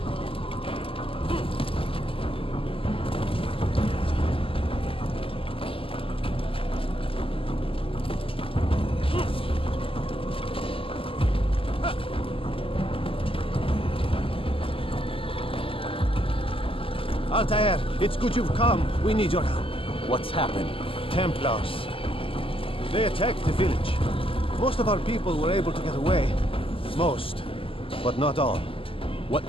Altair, it's good you've come. We need your help. What's happened? Templars. They attacked the village. Most of our people were able to get away. Most, but not all. What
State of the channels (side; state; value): right; late; 0.26 ms